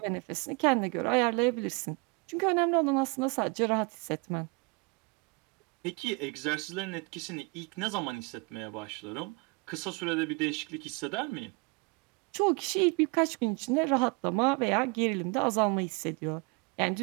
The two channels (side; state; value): left; quieter; 30.7 dB